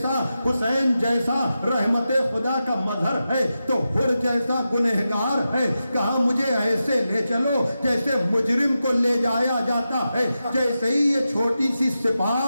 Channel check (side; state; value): both; inverted; correlation -0.90